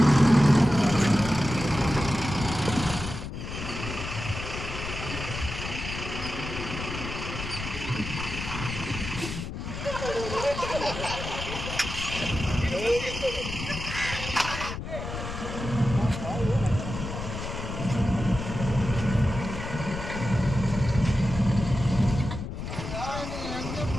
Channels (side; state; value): left; noise; rumble, 7 dB below the sound